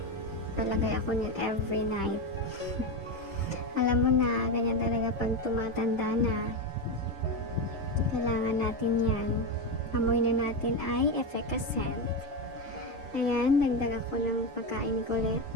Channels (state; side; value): normal; both; correlation 0.13